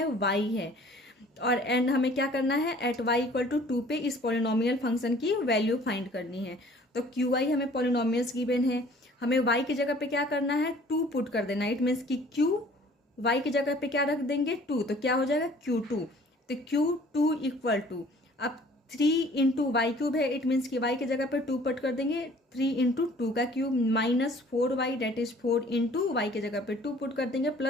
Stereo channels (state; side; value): normal; both; correlation 0.53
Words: y है। और एंड हमें क्या करना है, एट y इक्वल टू 2 पे इस पॉलिनोमियल फंक्शन की वैल्यू फाइंड करनी है। तो Qy हमें पॉलिनोमियल्स गिवन है, हमें y की जगह पे क्या करना है, 2 पुट कर देना है। इट मीन्स कि Q y की जगह पे क्या रख देंगे, 2, तो क्या हो जाएगा Q2। तो Q2 इक्वल टू, अब 3 इंटू वाई क्यूब है। इट मीन्स कि y की जगह पे 2 पुट कर देंगे, 3 इंटू 2 का cube minus 4y that is 4 into y की जगह पे 2 पुट कर देंगे